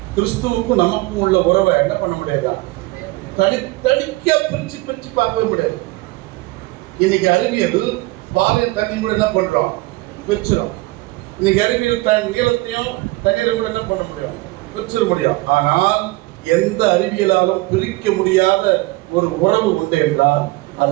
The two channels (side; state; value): left; quieter; 21.4 dB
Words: கிறிஸ்துவுக்கும் நமக்கும் உள்ள உறவை என்ன பண்ண முடியாதா, தனித்தனிக்கா பிரிச்சு பிரிச்சு பார்க்கவே முடியாது. இன்னைக்கு அறிவியல் பாலையும் தண்ணி கூட என்ன பண்றோம், பிரிச்சிடும். இன்னைக்கு அறிவியல் நீளத்தையும் தண்ணீரை கூட என்ன பண்ண முடியும், பிரிச்சிட முடியும். ஆனால் எந்த அறிவியலாலும் பிரிக்க முடியாத ஒரு உறவு உண்டு என்றால்